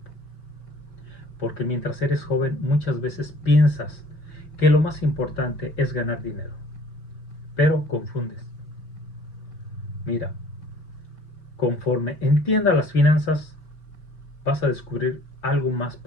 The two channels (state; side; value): late; right; 5.2 ms